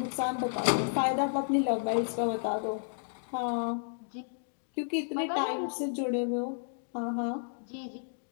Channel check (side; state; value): right; silent; digital silence